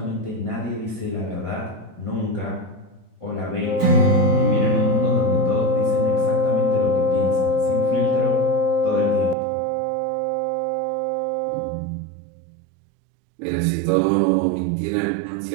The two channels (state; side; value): drops out; left; at 9.3 s